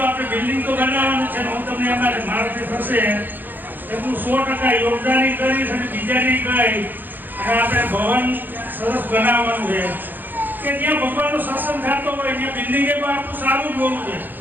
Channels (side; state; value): left; late; 0.088 ms